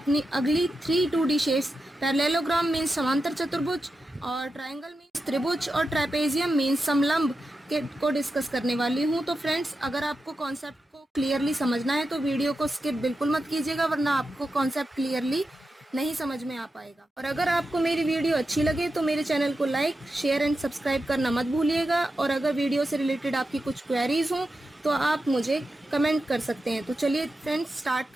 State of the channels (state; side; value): normal; both; correlation 0.90